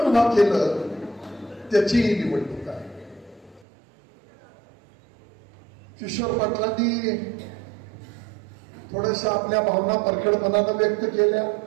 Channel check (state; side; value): drops out; left; at 3.7 s